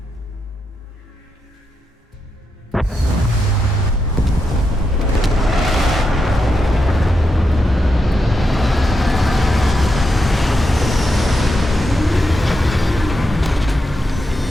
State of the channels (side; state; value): both; normal; correlation 0.85